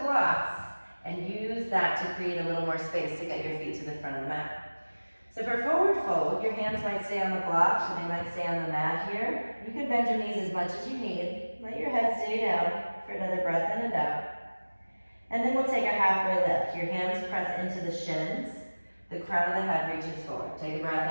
blocks and use that to create a little more space to get your feet to the front of the mat. So for forward fold, your hands might stay on the blocks or they might stay on the mat here. You can bend your knees as much as you need. Let your head stay down for another breath in and out. And then we'll take a halfway lift. Your hands press into the shins. The crown of the head reaches forward. Take a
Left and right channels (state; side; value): inverted; both; correlation -1.00